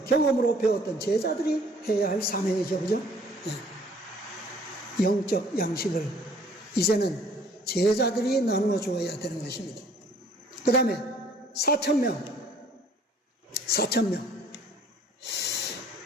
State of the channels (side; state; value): both; normal; correlation 0.57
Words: 경험으로 배웠던 제자들이 해야 할 사명이죠. 그죠? 네. 영적 양식을 이제는 제자들이 나누어 주어야 되는 것입니다. 그 다음에 4,000명.